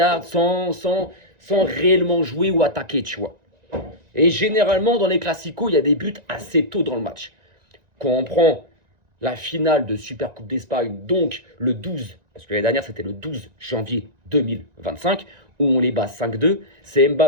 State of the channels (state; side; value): late; left; 2.0 ms